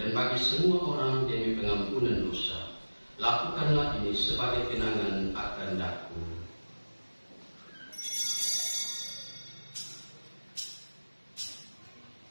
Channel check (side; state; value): both; inverted; correlation -1.00